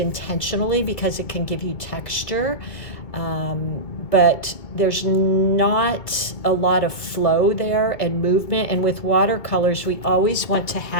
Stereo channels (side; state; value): right; late; 2.2 ms